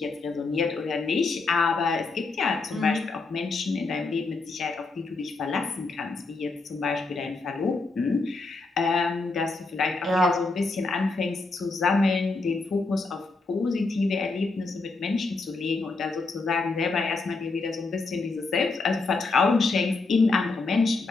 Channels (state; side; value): quieter; right; 3.7 dB